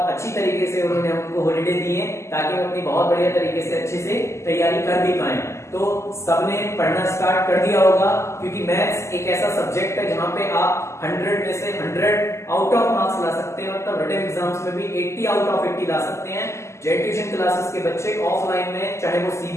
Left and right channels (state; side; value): late; right; 0.13 ms